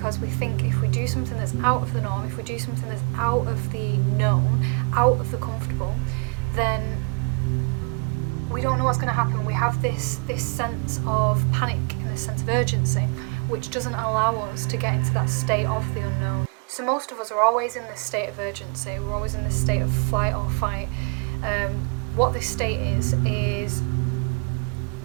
we think if we do something that's out of the norm, if we do something that's out of the known, out of the comfortable, then we don't know what's going to happen. We have this sense of panic and this sense of urgency, which doesn't allow us to get into that state of the unknown. So most of us are always in this state of urgency. We're always in this state of flight or fight. What this state is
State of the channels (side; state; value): left; quieter; 36.8 dB